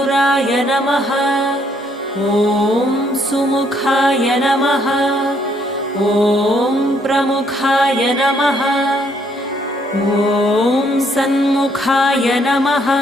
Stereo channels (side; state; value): both; normal; correlation 0.69